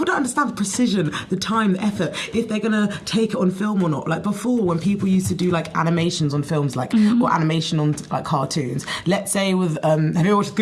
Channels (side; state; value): both; identical; correlation 1.00